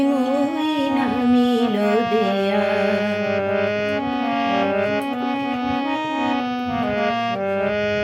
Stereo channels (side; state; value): both; identical; correlation 1.00